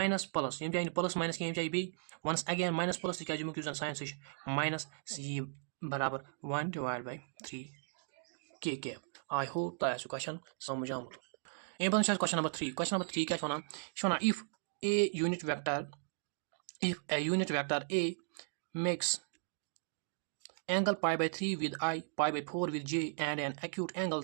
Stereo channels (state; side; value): silent; left; digital silence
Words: plus यम जान प्लस माइनस क्या जाए B once again minus plus तक जन साइन सह माइनस यह बराबर 1 डिवाइड बाय 3 के कैप आई होप तह क्वेश्चन समझ आमुत अम पे क्वेश्चन नंबर 3 क्या one if a unit vector a makes angle pi by 3 with I, pi by 4 with j, and an acute angle